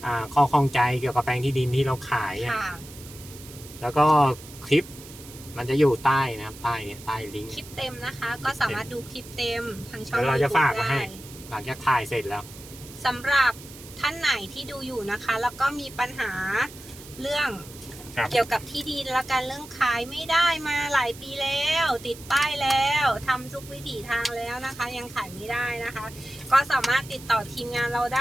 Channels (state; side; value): noise; right; hiss, 17 dB below the sound